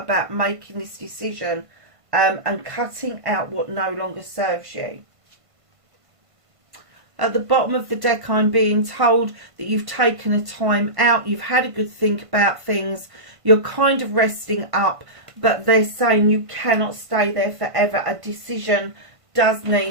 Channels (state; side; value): late; left; 1.5 ms